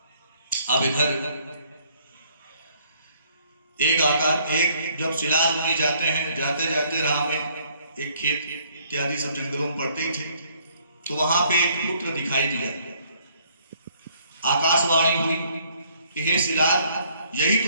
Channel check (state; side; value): inverted; both; correlation -0.64